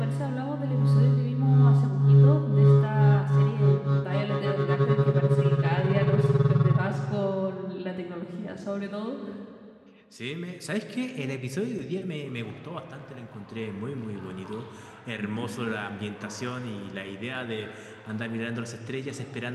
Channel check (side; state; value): both; identical; correlation 1.00